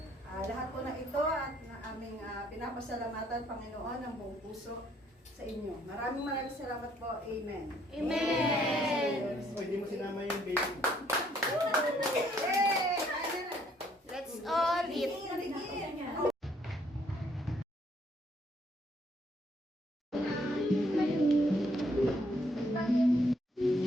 Lahat po na ito at na aming pinapasalamatan, Panginoon, ng buong puso sa inyo. Maraming salamat po. Amen. Amen. Hindi mo sinama yung baby. Hey! Let's all eat.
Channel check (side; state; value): both; normal; correlation 0.67